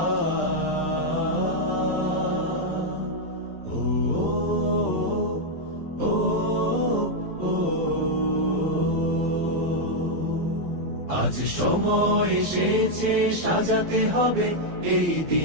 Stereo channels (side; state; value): left; late; 12 ms